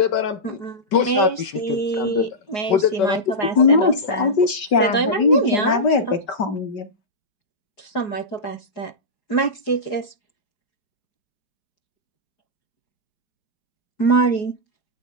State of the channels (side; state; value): right; late; 4.8 ms